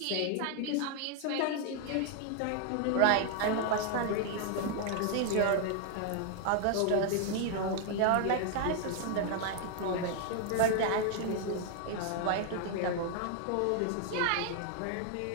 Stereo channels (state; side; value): different; both; correlation 0.00